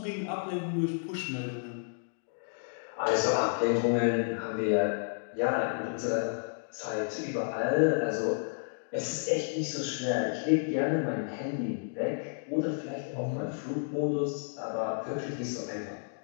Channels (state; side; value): silent; right; digital silence